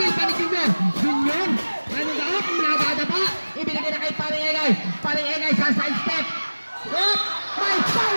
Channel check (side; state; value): both; inverted; correlation -1.00